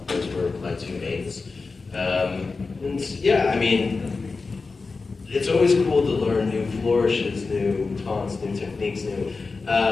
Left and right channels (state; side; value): quieter; right; 4.2 dB